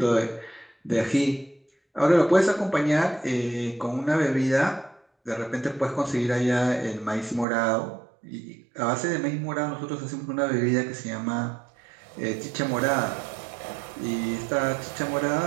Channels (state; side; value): drops out; left; at 7.5 s